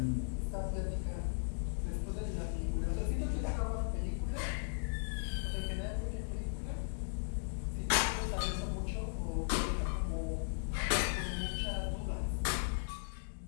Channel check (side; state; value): right; silent; digital silence